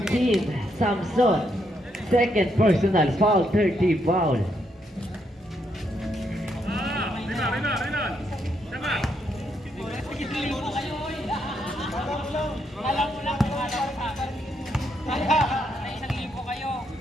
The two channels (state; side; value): normal; both; correlation 0.77